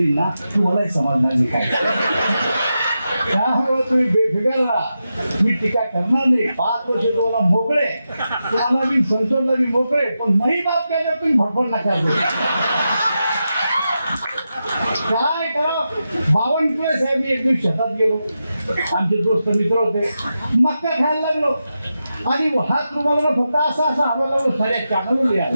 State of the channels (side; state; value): both; inverted; correlation -0.89